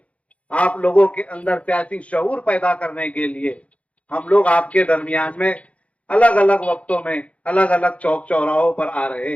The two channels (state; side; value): late; right; 0.064 ms